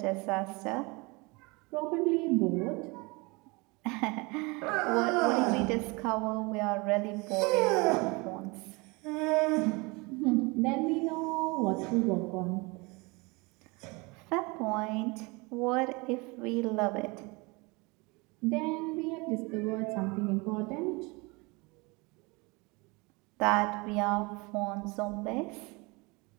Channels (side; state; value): left; quieter; 26.7 dB